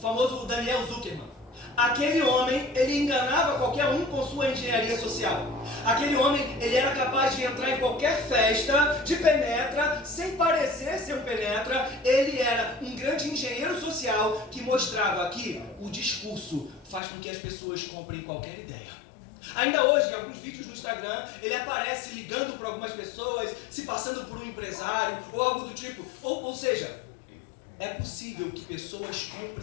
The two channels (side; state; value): right; drops out; at 17.0 s